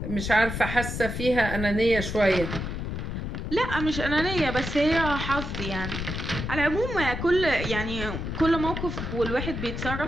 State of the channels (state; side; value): noise; left; rumble, 4 dB below the sound